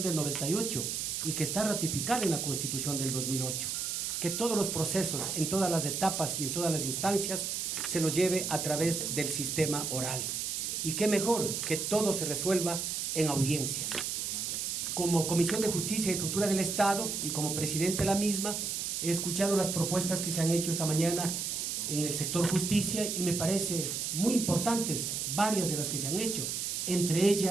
del 98 y que está ratificada en la Constitución del 2008, que todos los procesos, en todas las etapas y en todas las instancias, se los lleve a través del sistema oral. Y qué mejor que todo se resuelva en audiencias. Como Comisión de Justicia y Estructura del Estado y como presidente de la misma, he escuchado las propuestas que se han hecho esta mañana en el sector justicia y me parece muy importantes varias de las que se han hecho, entre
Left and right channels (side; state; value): right; noise; hiss, 2 dB below the sound